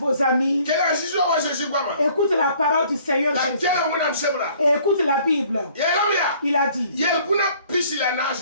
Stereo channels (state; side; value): inverted; both; correlation -0.57